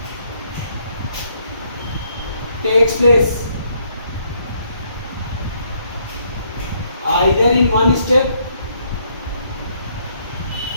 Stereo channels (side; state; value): both; inverted; correlation -0.70